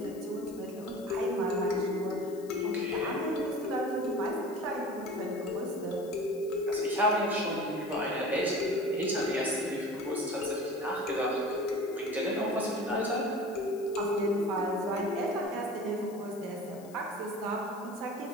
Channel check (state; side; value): noise; left; hiss, 22 dB below the sound